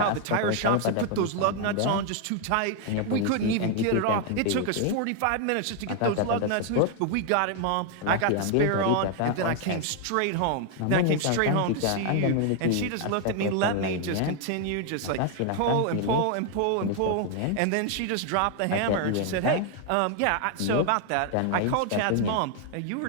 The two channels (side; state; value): both; different; correlation 0.00